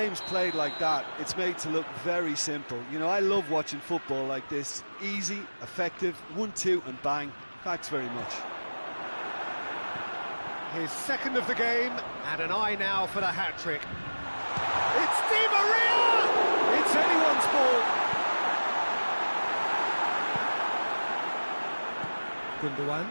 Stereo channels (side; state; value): both; inverted; correlation -1.00